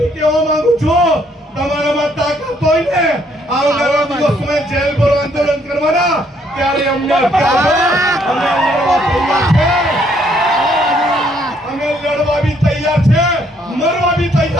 કહેવા માંગુ છું તમારામાં તાકાત હોય ને આવનારા દિવસોમાં જેલ ભરો આંદોલન કરવાના ત્યારે અમને અમે લડવા બી તૈયાર છે મરવા બી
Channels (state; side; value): normal; both; correlation 0.68